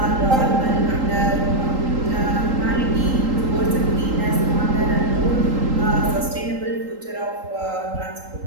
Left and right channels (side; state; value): left; late; 3.8 ms